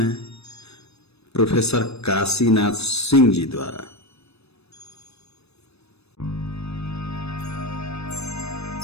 प्रोफेसर काशीनाथ सिंह जी द्वारा।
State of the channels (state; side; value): late; right; 0.79 ms